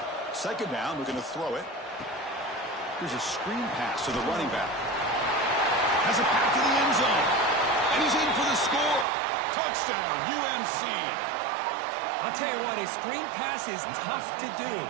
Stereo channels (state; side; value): drops out; left; at 9.1 s